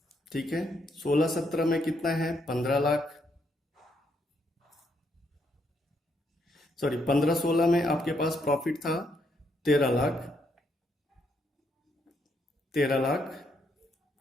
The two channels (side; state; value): both; normal; correlation 0.75